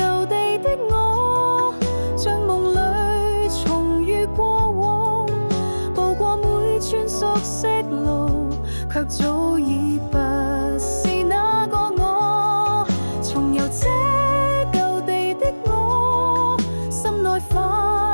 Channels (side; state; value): both; inverted; correlation -1.00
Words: 地的我，像夢裏重遇過往，步過每寸熟悉路，卻早已不是那個我。重遊這舊地的我，心內